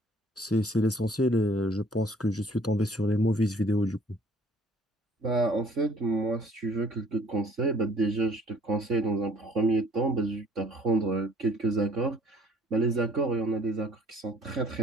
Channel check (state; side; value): normal; both; correlation 0.57